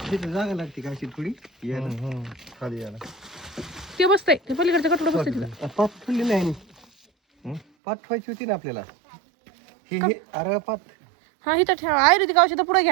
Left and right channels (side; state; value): left; drops out; at 7.6 s